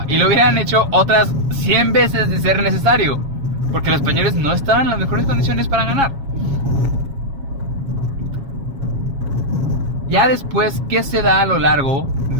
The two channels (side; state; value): left; late; 7.3 ms